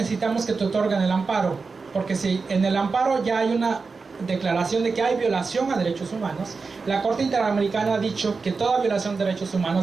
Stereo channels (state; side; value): quieter; left; 4.5 dB